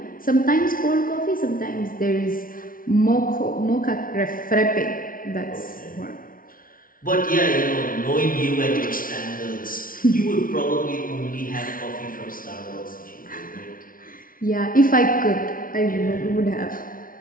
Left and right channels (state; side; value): late; right; 0.41 ms